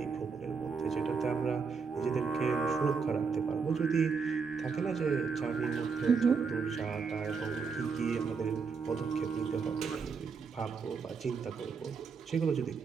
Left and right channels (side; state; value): left; quieter; 5.4 dB